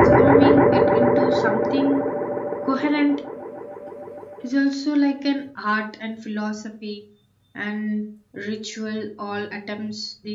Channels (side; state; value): both; identical; correlation 1.00